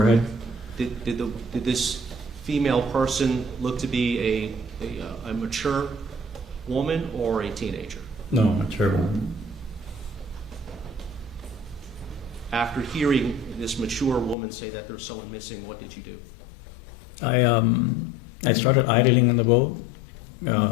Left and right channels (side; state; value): right; drops out; at 14.4 s